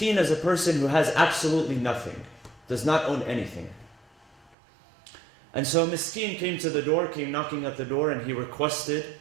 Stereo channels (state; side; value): drops out; left; at 4.5 s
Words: is a person who has absolutely nothing, does not own anything. And so Miskeen came to the door, came knocking at the door, and he requested